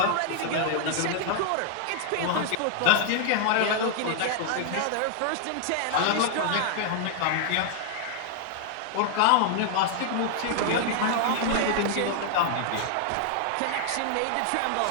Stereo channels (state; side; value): different; both; correlation 0.00